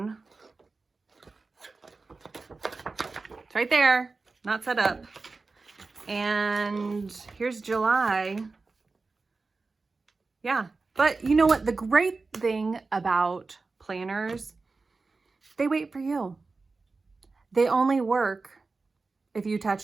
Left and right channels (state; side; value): quieter; left; 3.9 dB